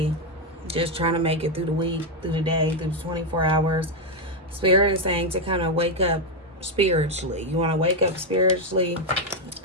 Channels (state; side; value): normal; both; correlation 0.04